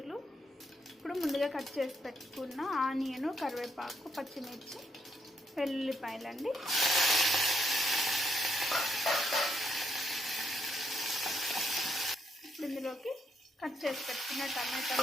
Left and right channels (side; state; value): both; normal; correlation 0.76